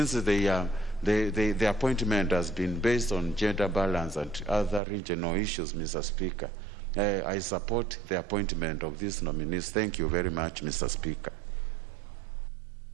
the appointment has been based on gender balance and other regional issues, Mr. Speaker. I support the appointment of these nominees. Thank you very much, Mr. Speaker.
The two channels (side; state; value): left; drops out; at 4.8 s